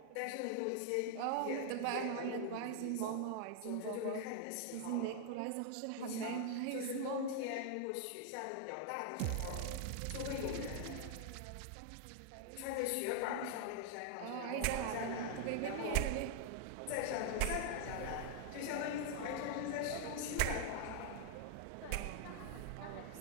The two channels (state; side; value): different; both; correlation -0.01